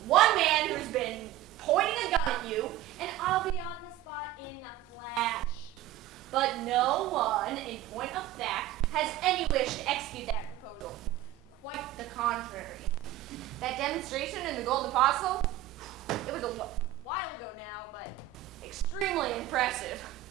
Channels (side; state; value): left; quieter; 13.4 dB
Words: one man who's been pointing a gun at you, and I'll be on the spot in a flash. But no one, in point of fact, has any wish to execute that proposal. Quite the contrary. That demonstration in the Golden Apostle, it was a while ago now, but extremely impressive.